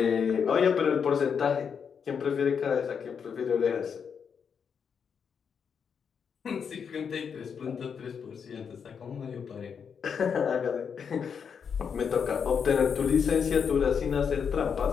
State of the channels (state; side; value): quieter; right; 6.8 dB